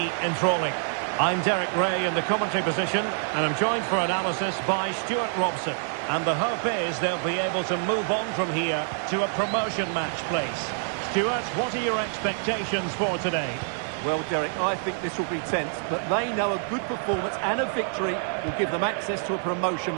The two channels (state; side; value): silent; left; 61 dB below the other